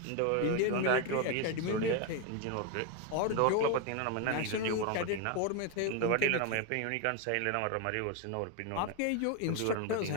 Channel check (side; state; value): both; different; correlation 0.01